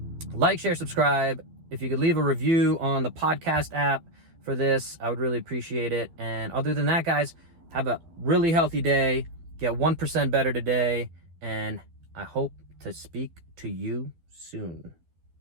like, share, subscribe. If you could leave a review on the podcast app for this, I would really appreciate it. And other than that, guys, have a really healthy day. Get 1% better today. And I hope to speak to you soon.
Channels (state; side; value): late; left; 12 ms